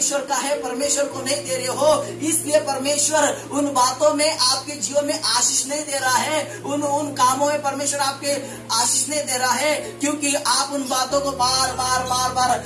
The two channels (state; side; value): identical; both; correlation 1.00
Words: का है, परमेश्वर को नहीं दे रहे हो। इसलिए परमेश्वर उन बातों में आपके जीवन में आशीष नहीं दे रहा है, उन कामों में परमेश्वर आपके आशीष नहीं दे रहा है, क्योंकि आप उन बातों को बार बार